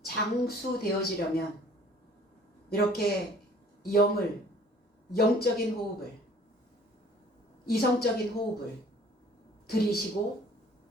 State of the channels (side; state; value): both; normal; correlation 0.53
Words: 장수되어지려면 이렇게 영적인 호흡을, 이성적인 호흡을 들이쉬고